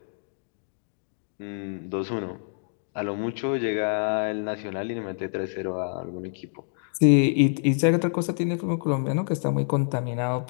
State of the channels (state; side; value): silent; right; digital silence